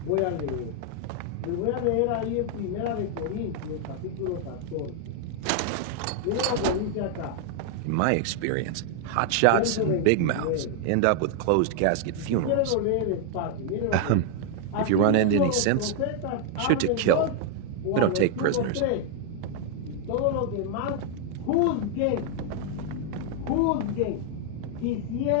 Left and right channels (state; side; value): different; both; correlation 0.00